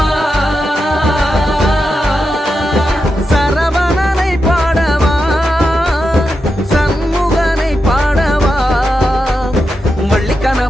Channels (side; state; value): both; normal; correlation 0.88